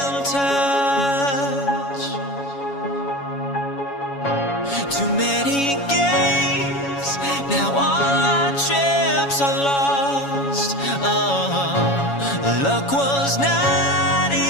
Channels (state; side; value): late; right; 7.2 ms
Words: touch? Too many games, now all our chips are lost. Oh, luck was not